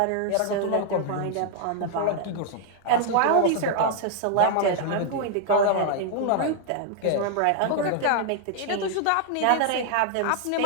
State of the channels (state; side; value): different; both; correlation 0.00